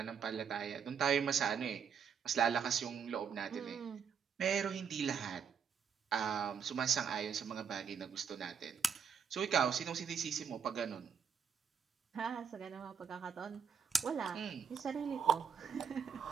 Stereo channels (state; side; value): quieter; left; 6.9 dB